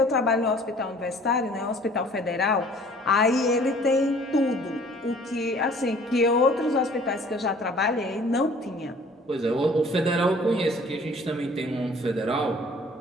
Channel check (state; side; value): normal; both; correlation 0.52